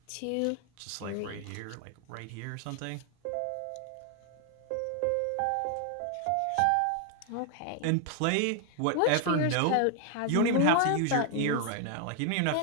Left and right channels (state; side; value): different; both; correlation 0.00